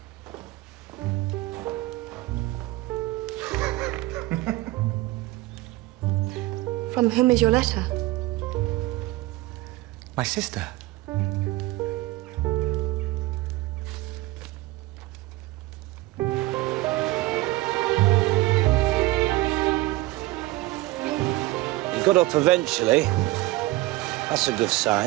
From whom is your letter? My sister. Got up eventually. That's a good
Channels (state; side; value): quieter; left; 18.9 dB